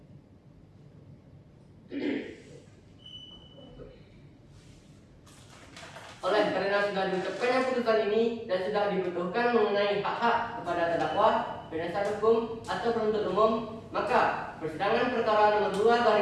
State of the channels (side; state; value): both; identical; correlation 1.00